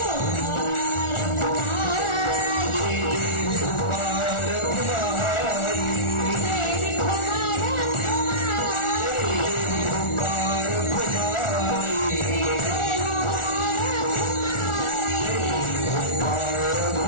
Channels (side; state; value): right; late; 1.4 ms